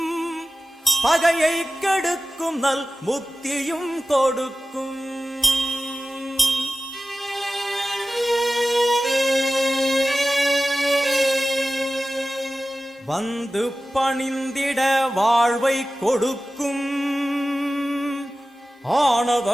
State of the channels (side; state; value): both; normal; correlation 0.94